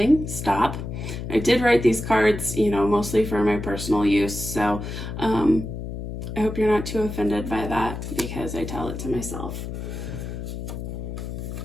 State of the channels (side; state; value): left; noise; hum, 6 dB below the sound